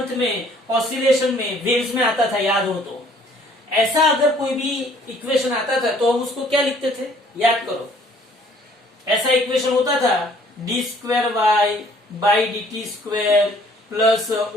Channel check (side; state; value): both; normal; correlation 0.59